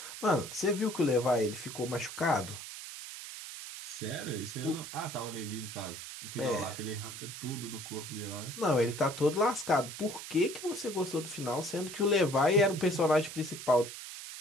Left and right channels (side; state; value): right; noise; hiss, 10 dB below the sound